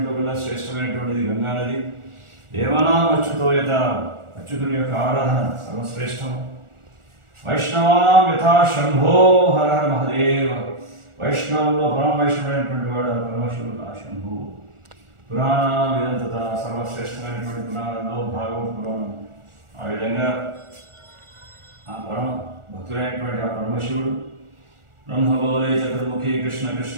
కూడా శ్రేష్టమైనటువంటిది గంగా నది. దేవానాం అచ్యుతో యథా, అచ్యుతుని యొక్క ఆరాధన సర్వశ్రేష్టం. వైష్ణవానాం యథా శంభో హర హర మహదేవ, వైష్ణవుల్లో పరమ వైష్ణవుడైనటువంటి వాడు పరమశివుడు ఆ శంభు. పురాణానాం ఇదంతత, సర్వశ్రేష్టమైనటువంటి పురాణంలో భాగవత పురాణం. ఆ విధంగా ఆ పరమ భక్తుడైనటువంటి ఆ పరమశివుడు బ్రహ్మబోలే చతుర్ముఖి కృష్ణ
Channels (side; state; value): left; late; 1.4 ms